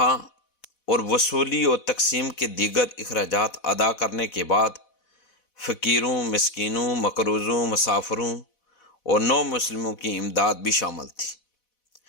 اور وصولی اور تقسیم کے دیگر اخراجات ادا کرنے کے بعد فقیروں، مسکینوں، مقروضوں، مسافروں اور نو مسلموں کی امداد بھی شامل تھی۔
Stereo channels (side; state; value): right; late; 4.1 ms